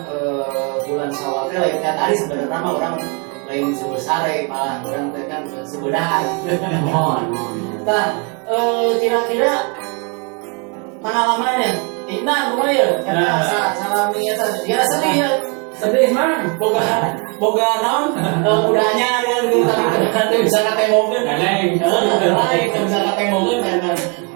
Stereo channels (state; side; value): quieter; left; 33.5 dB